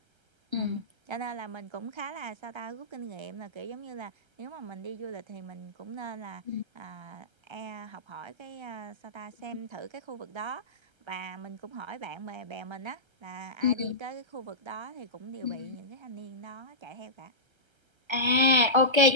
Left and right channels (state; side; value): late; left; 1.3 ms